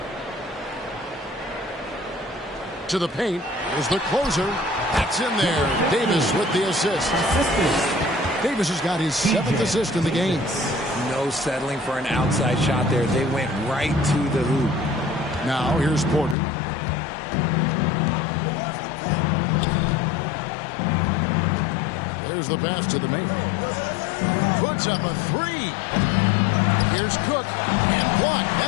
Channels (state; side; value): drops out; right; at 16.4 s